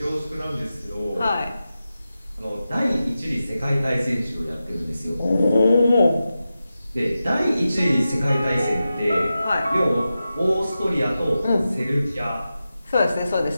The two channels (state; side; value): inverted; both; correlation -0.92